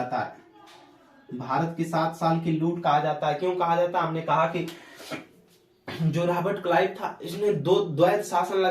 है। भारत की 7 साल की लूट कहा जाता है। क्यों कहा जाता है? हमने कहा कि जो रॉबर्ट क्लाइव था इसने द्वैत शासन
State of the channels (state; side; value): identical; both; correlation 1.00